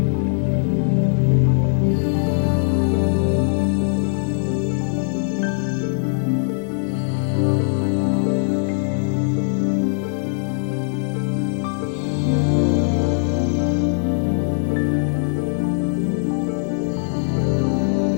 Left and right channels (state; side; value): silent; right; digital silence